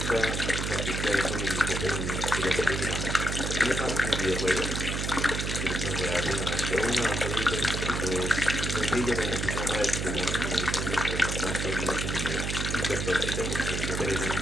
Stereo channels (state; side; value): noise; right; hum, 2 dB below the sound